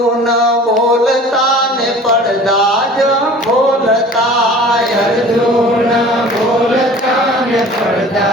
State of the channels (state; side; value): normal; both; correlation 0.44